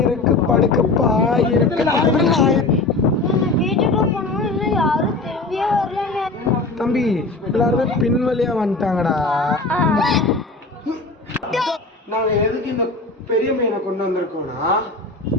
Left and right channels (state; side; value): quieter; right; 3.3 dB